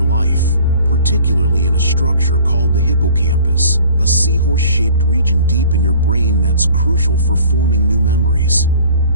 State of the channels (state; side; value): inverted; both; correlation -0.50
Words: life, particularly in a structure called the hippocampus, a seahorse-shaped region deep in your brain that's crucial for forming new memories.